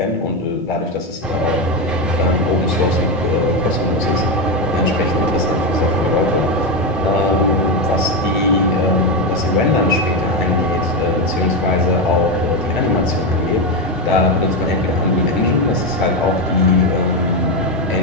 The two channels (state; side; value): normal; both; correlation 0.10